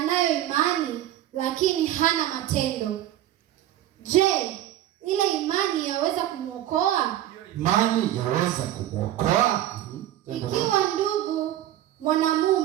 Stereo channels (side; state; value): left; quieter; 12.9 dB